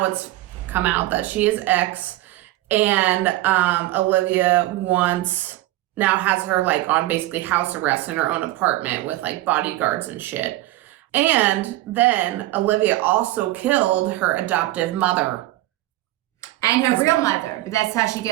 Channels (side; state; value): left; quieter; 17.0 dB